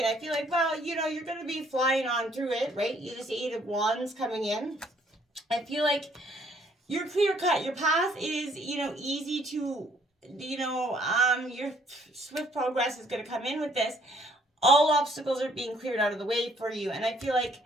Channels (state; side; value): normal; both; correlation 0.64